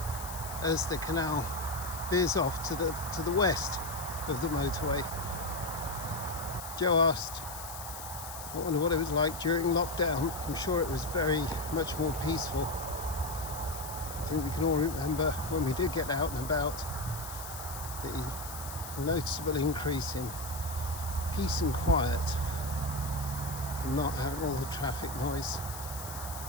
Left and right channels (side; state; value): left; noise; hiss, 11 dB below the sound